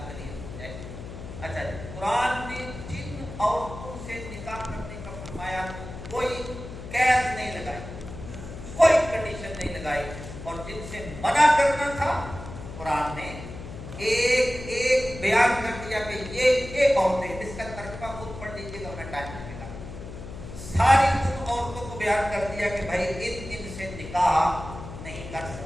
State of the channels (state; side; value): noise; left; hum, 11 dB below the sound